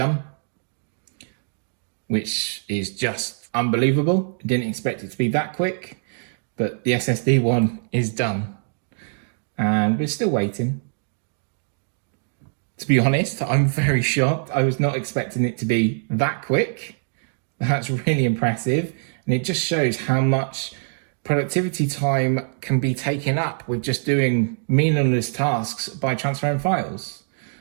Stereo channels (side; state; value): left; silent; 63 dB below the other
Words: which is just unbelievable. Didn't expect it to be that quick, but the SSD one is done. And we're still waiting. To be honest, I'm very shocked. I was not expecting it to be that quick. That's really impressive. And it just shows how much productivity time can be taken up with just doing meaningless tasks by transferring files.